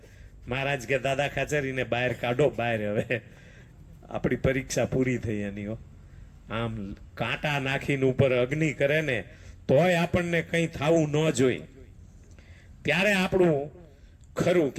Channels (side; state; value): both; identical; correlation 1.00